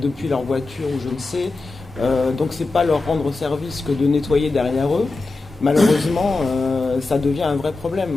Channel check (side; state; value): right; quieter; 3.5 dB